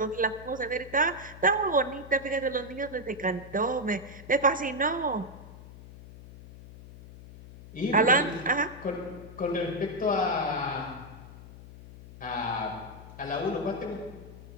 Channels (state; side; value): noise; left; hum, 16 dB below the sound